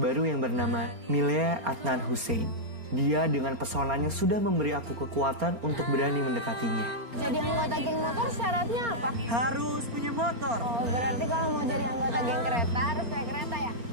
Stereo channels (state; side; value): late; left; 4.3 ms